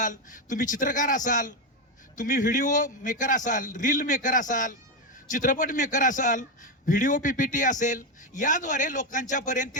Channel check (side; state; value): both; normal; correlation 0.10